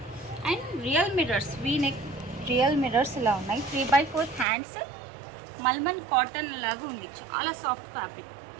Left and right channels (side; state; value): left; drops out; at 4.5 s